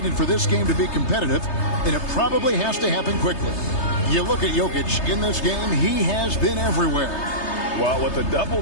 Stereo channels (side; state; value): right; late; 3.3 ms